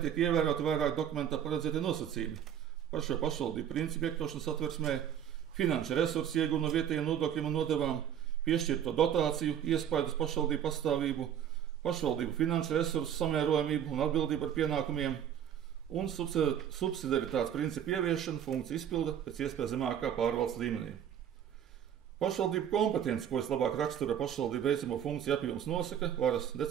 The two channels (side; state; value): left; quieter; 9.4 dB